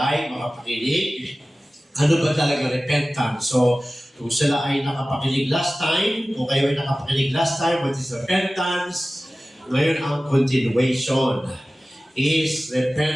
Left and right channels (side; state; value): both; normal; correlation 0.96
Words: makapakinig. Ano ba talaga repentance? So, kung sila ay nakapakinig last time, kung kayo ay nakapakinig last time, what is repentance? Ngayon ang continuation. Is